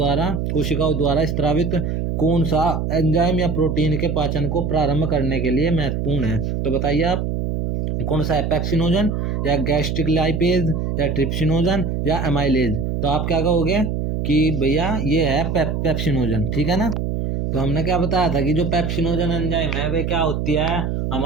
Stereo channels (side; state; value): right; noise; hum, 1 dB below the sound